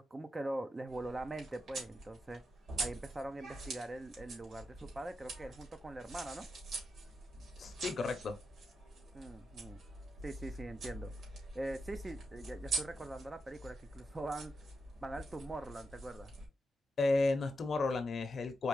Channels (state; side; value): normal; both; correlation 0.87